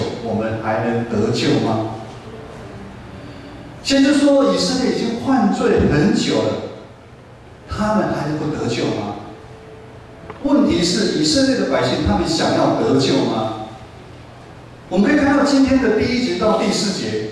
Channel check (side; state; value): both; identical; correlation 1.00